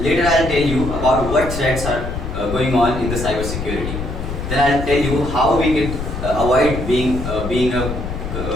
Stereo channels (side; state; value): left; noise; rumble, 6 dB below the sound